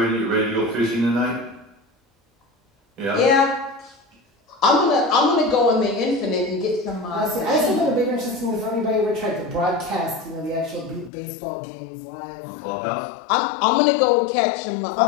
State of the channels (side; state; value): right; drops out; at 11.1 s